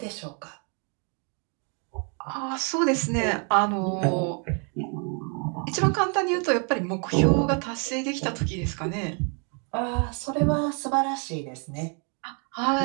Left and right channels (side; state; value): left; quieter; 38.9 dB